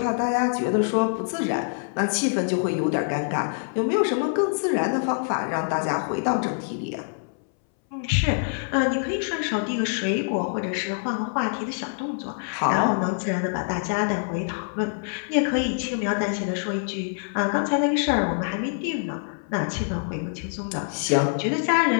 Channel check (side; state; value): right; silent; 62 dB below the other